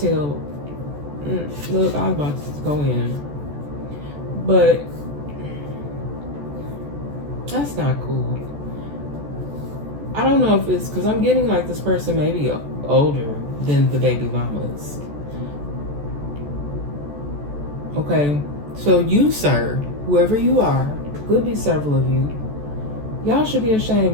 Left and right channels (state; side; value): late; left; 14 ms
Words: Look, I was about to go in. But that's not cool. I don't know if it's because I'm getting like this person maybe older than the baby mamas. Okay, so you, sir, whoever you are, could be several of you, Y'all should be ashamed.